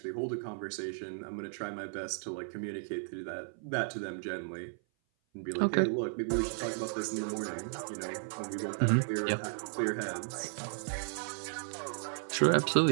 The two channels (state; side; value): silent; left; 55 dB below the other